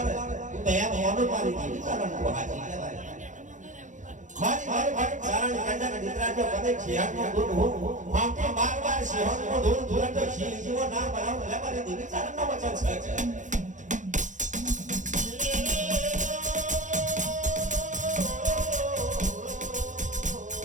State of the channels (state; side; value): late; left; 0.36 ms